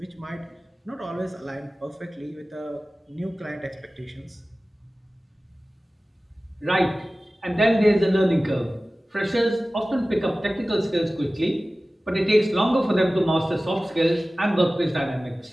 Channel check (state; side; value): normal; both; correlation 0.97